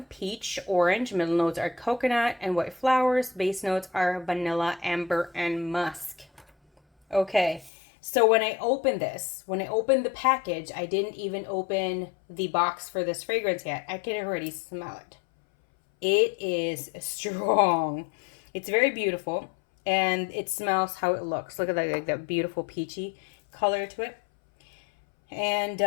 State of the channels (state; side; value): drops out; right; at 7.7 s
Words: peach, orange. Middle notes are coconut and white flowers. Base notes are vanilla, amber, and musk. Okay, so when I opened the package, I didn't even open the box for this fragrance yet. I can already smell it. It is strong. It's very beautiful, and it smells how it looks. Look at that, like that beautiful peachy color to it. And